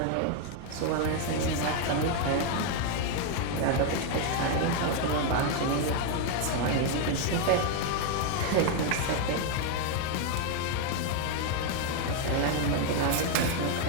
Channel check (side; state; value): both; different; correlation 0.01